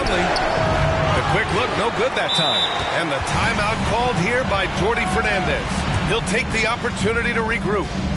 The quick look, no good that time. And the timeout called here by Jordy Fernandez. He'll take the opportunity to regroup.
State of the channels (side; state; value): both; identical; correlation 1.00